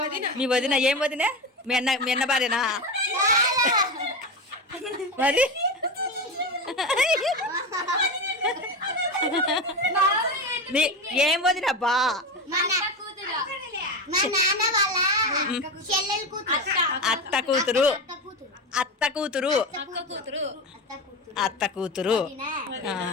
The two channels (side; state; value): both; normal; correlation 0.20